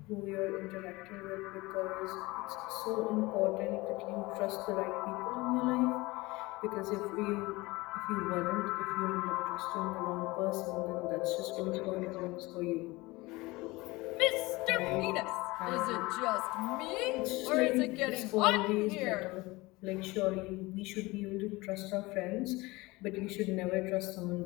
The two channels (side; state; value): right; quieter; 22.0 dB